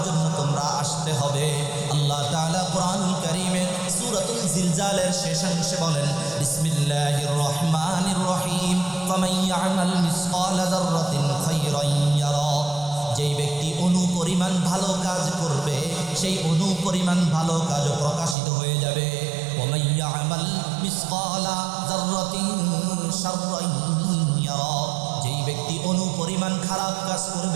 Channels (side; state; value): left; drops out; at 18.4 s